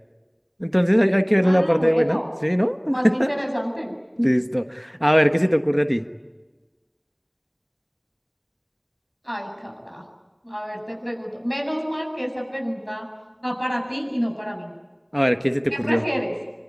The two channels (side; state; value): both; identical; correlation 1.00